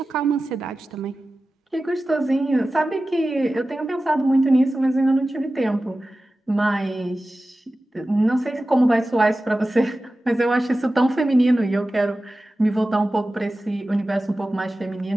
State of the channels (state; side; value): normal; both; correlation 0.95